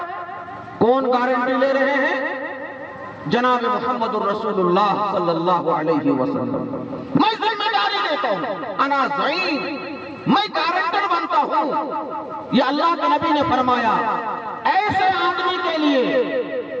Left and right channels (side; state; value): both; identical; correlation 1.00